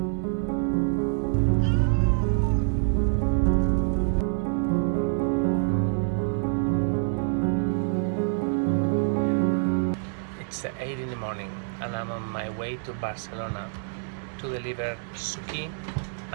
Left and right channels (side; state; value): left; silent; digital silence